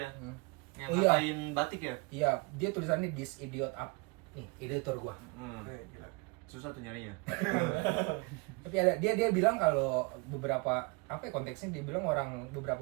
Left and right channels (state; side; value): quieter; left; 28.4 dB